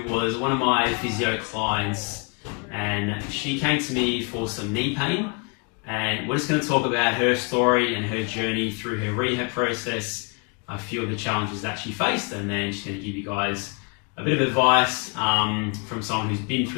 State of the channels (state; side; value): quieter; right; 33.8 dB